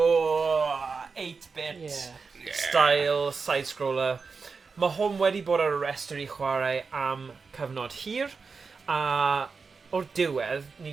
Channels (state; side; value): quieter; left; 4.9 dB